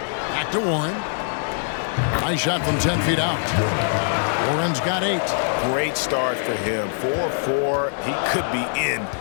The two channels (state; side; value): silent; right; 64 dB below the other